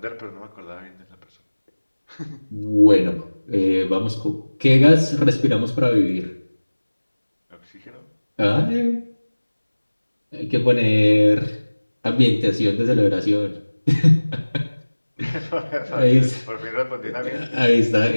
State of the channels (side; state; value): both; inverted; correlation -1.00